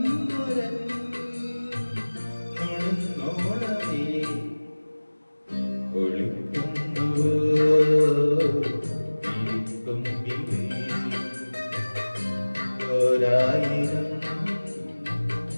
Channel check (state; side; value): inverted; both; correlation -1.00